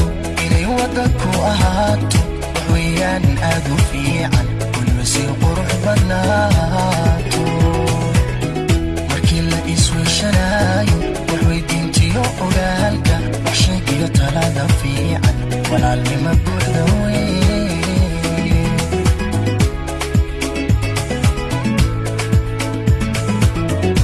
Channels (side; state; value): both; identical; correlation 1.00